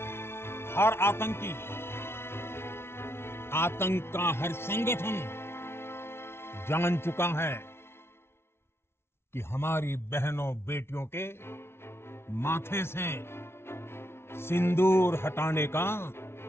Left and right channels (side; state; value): right; late; 0.12 ms